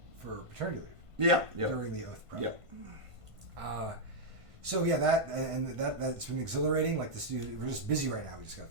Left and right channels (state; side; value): late; left; 1.5 ms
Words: for paternity leave. Yeah. During the Oath project. Yeah. So that's been exhilarating. Like the studio, we're just busy right now. We just got